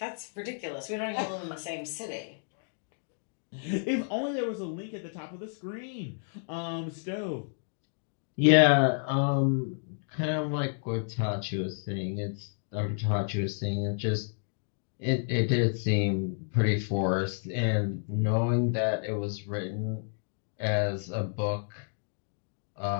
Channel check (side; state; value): right; silent; digital silence